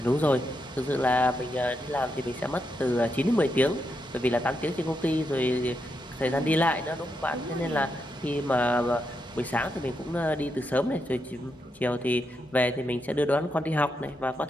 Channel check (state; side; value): normal; both; correlation 0.83